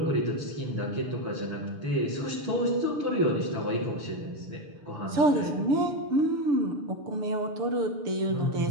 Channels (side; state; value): left; late; 6.7 ms